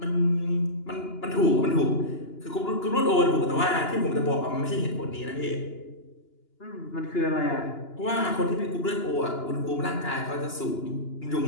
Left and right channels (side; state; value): right; late; 2.9 ms